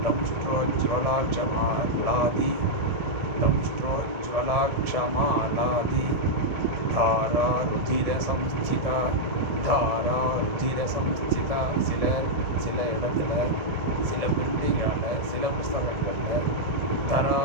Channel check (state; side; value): late; left; 1.7 ms